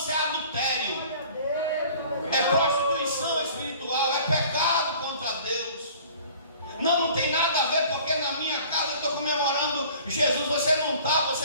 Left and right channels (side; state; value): both; inverted; correlation -0.48